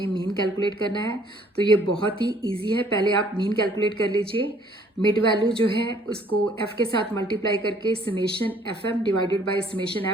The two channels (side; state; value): both; normal; correlation 0.60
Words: मीन कैलकुलेट करना है। तो ये बहुत ही इजी है, पहले आप मीन कैलकुलेट कर लीजिए। मिड वैल्यू जो है उसको एफ के साथ मल्टीप्लाई करके summation F M divided by summation